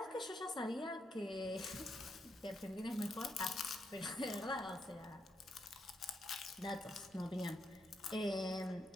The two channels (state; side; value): normal; both; correlation 0.80